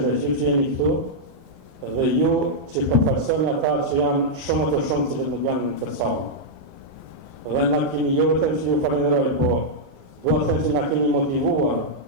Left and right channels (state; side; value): late; left; 21 ms